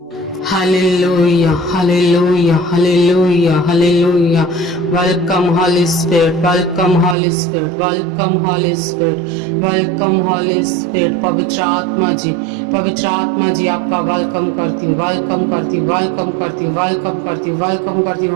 Hallelujah, hallelujah, hallelujah, hallelujah. Welcome, Holy Spirit, welcome, Holy Spirit, welcome, Holy Spirit, welcome, Holy Spirit. पवित्र आत्मा जी आपका welcome करती हूँ, welcome करती हूँ, वेलकम करती हूँ, वेलकम करती हूँ, वेलकम करती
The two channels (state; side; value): drops out; left; at 7.2 s